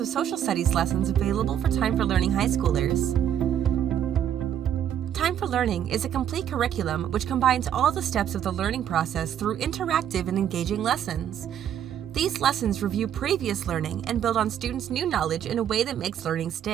of social studies lessons available for Time for Learning high schoolers. Time for Learning is a complete curriculum which combines all the steps of the learning process through interactive and engaging lessons. These lessons review previous learning and build on students' new knowledge in a way that makes learning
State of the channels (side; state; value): left; quieter; 9.9 dB